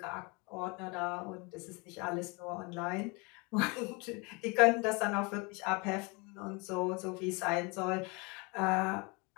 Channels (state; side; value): quieter; right; 29.1 dB